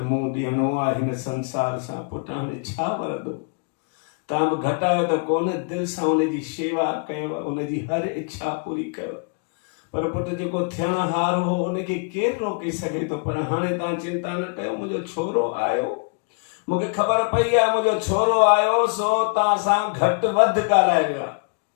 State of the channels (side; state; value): right; quieter; 38.1 dB